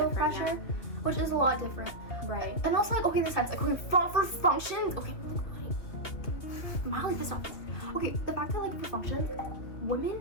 pressure, which is a lot different. Right. And also like, okay, in the sense, like, okay, for functions, okay, I'm mildly pissed off. Okay, the fact that like for functions,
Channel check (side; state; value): right; late; 2.8 ms